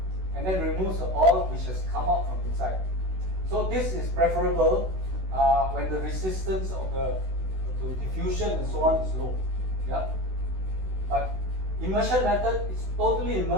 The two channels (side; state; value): left; late; 16 ms